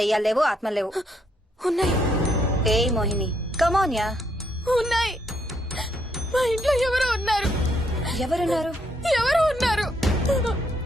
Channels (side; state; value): both; normal; correlation 0.74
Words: లేవు, ఆత్మలు లేవు. ఉన్నాయి ఏయ్ మోహిని, కమోన్యా. ఉన్నాయి. మా ఇంట్లో ఎవరో ఉన్నారు. ఎవరున్నారు? ఎవరో ఉన్నారు.